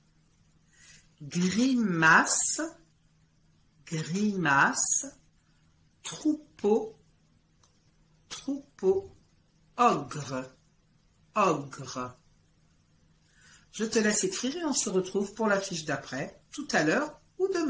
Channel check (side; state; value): both; identical; correlation 1.00